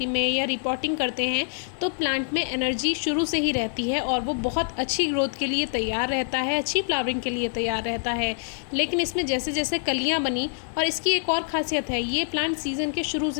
में या रिपोर्टिंग करते हैं, तो प्लांट में एनर्जी शुरू से ही रहती है और वो बहुत अच्छी ग्रोथ के लिए तैयार रहता है, अच्छी फ्लावरिंग के लिए तैयार रहता है। लेकिन इसमें जैसे जैसे कलियाँ बनी, और इसकी एक और ख़ासियत है, ये प्लांट सीज़न के शुरू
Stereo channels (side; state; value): right; silent; 61 dB below the other